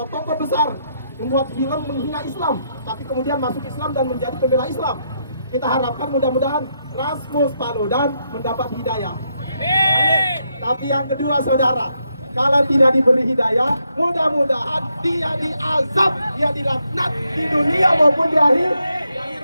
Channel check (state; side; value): inverted; both; correlation -0.79